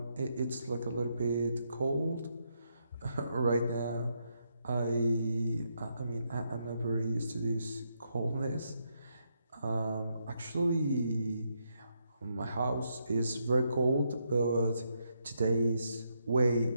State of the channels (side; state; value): both; inverted; correlation -0.79